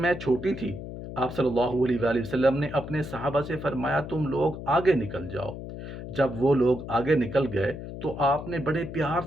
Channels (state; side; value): noise; left; hum, 10 dB below the sound